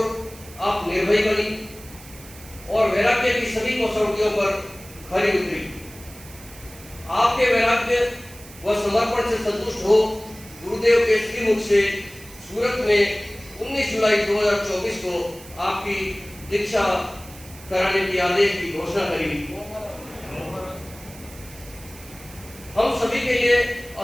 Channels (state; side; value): noise; right; hiss, 19 dB below the sound